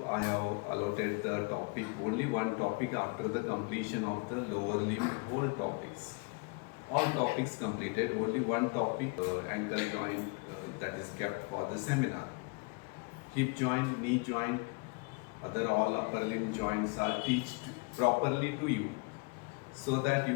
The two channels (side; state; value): right; quieter; 31.7 dB